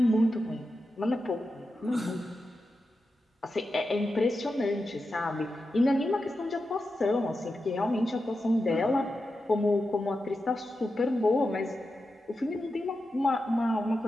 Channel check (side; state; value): both; normal; correlation 0.90